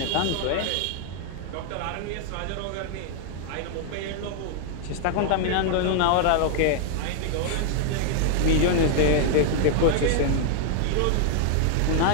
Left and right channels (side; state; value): both; different; correlation 0.00